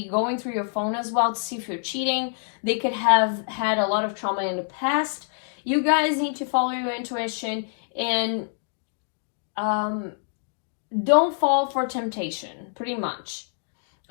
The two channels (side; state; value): right; silent; 61 dB below the other